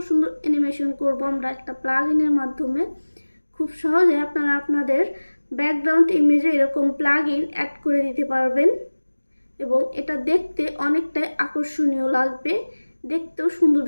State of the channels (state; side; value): inverted; both; correlation -1.00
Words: সুন্দর অ্যানিমেশন করব আমরা একটা প্লাগইনের মাধ্যমে। খুব সহজে আপনারা আপনাদের ব্যাকগ্রাউন্ড ইমেজে এরকম প্লাগইন অ্যাড করে দিতে পারবেন এবং এটা দেখতে অনেকটাই আকর্ষণীয় লাগবে, দেখতেও সুন্দর